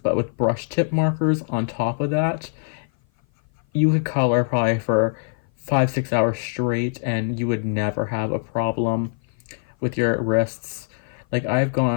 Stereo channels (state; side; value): silent; right; 56 dB below the other